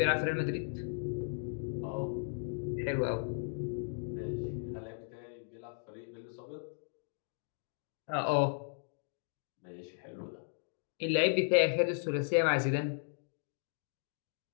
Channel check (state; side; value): silent; right; digital silence